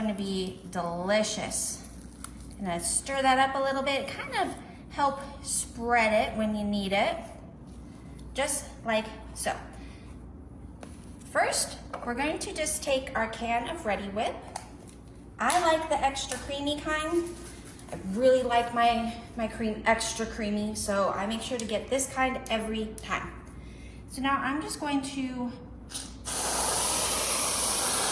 to be delicious. Gonna stir that up a little bit, kind of help spread it when you need it, just like so. First, we're going to just take our can of Ready Whip. I like the extra creamy kind. I really like my cream extra creamy, so I make sure to get this kind every time. So now I'm just going to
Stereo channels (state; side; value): identical; both; correlation 1.00